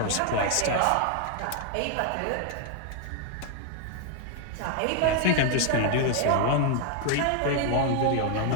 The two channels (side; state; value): both; different; correlation 0.00